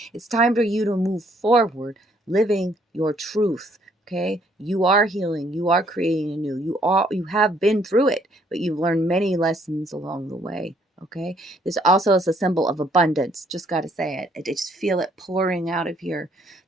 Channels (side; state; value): both; normal; correlation 0.66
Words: It's time for you to move forward, living your truth. Okay. You are healing. You are creating anew. You have been through it, but you've learned many lessons along the way. Okay. This also is a symbol of abundance. Just got to say it. I just feel it pouring out of here.